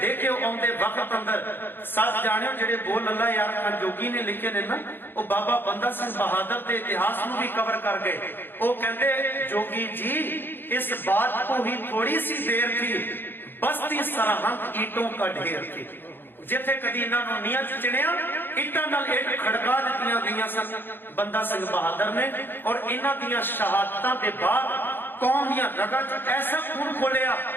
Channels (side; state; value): right; late; 0.099 ms